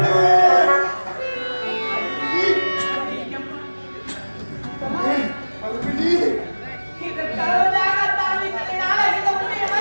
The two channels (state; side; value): inverted; both; correlation -1.00